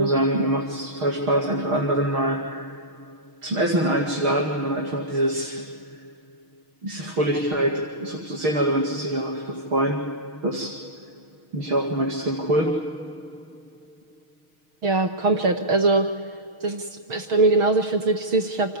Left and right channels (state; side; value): late; left; 6.4 ms